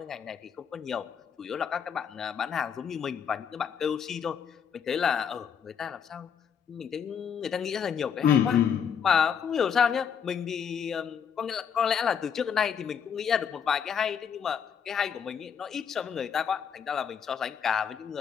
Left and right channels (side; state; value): right; quieter; 7.5 dB